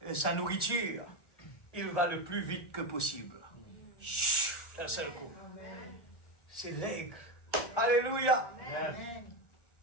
sa nourriture, il va le plus vite que possible. D'un seul coup. C'est l'aigle. Alléluia.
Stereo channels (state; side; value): late; right; 1.2 ms